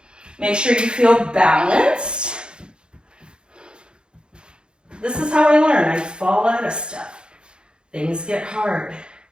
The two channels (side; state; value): left; late; 0.051 ms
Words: Make sure you feel balanced. This is how I learn. I fall out of stuff. Things get hard.